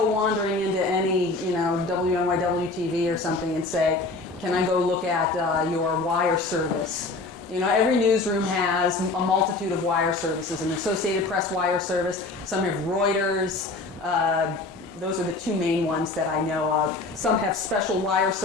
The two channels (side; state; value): right; quieter; 3.4 dB